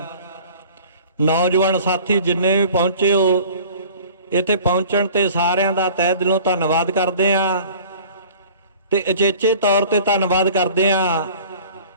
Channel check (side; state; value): both; inverted; correlation -0.46